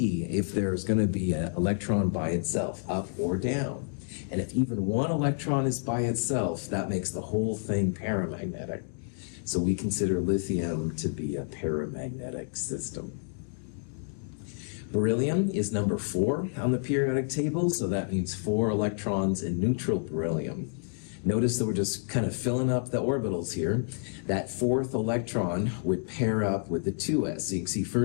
if there's going to be an electron by itself, up or down. And if even one electron is by itself, that makes the whole thing paramagnetic. So we consider lithium to be a paramagnetic system. Beryllium is number 4 on the periodic table, so that means 4 electrons in neutral beryllium. Notice that we're just kind of filling up the orbitals here. That 4th electron would pair up with the 2s. So you can see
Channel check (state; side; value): silent; right; digital silence